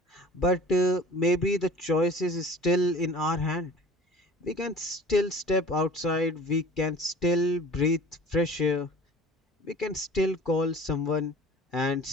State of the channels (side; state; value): both; normal; correlation 0.45